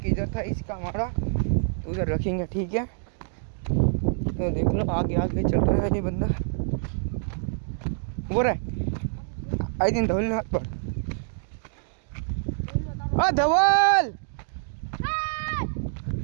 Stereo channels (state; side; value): silent; left; digital silence